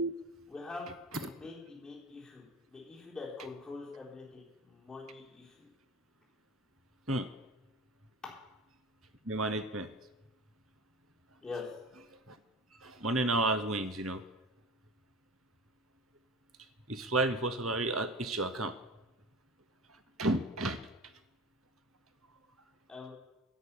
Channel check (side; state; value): both; normal; correlation 0.35